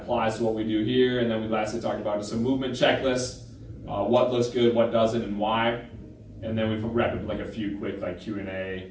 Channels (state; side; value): identical; both; correlation 1.00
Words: applies to what we do here. And then we lastly talked about just a movement checklist, what looks good, what doesn't, and why. And then we wrap up like a few quick like Q&A